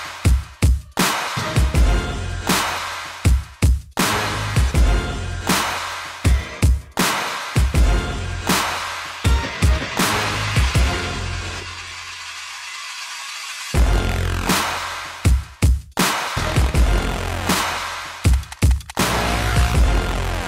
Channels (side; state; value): both; identical; correlation 1.00